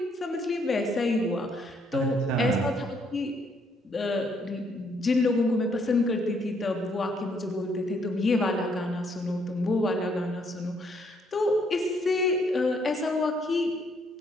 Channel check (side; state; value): both; normal; correlation 0.70